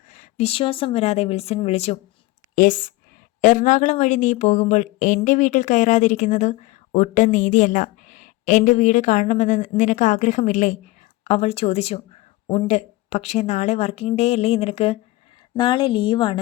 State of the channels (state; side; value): quieter; right; 19.6 dB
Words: വിശ്വാസം വരാതെ വിൽസൺ വിളിച്ചു. യെസ്. എറണാകുളം വഴി നീ പോകുമ്പോൾ എൻ്റെ വീട്ടിൽ കയറാതിരിക്കുന്നത് ഒട്ടും നീതിയല്ല. എൻ്റെ വീട് കാണണമെന്ന് നിനക്ക് ആഗ്രഹമില്ലേ? അവൾ ചോദിച്ചു. ഉണ്ട്, പക്ഷേ നാളെ വർക്കിംഗ് ഡേ അല്ലേ നിനക്ക്? നാളെ